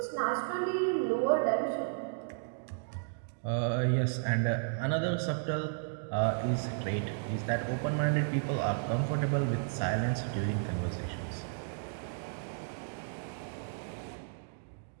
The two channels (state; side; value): silent; left; digital silence